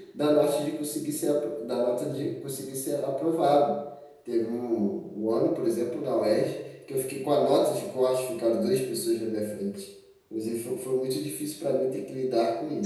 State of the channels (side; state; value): both; identical; correlation 1.00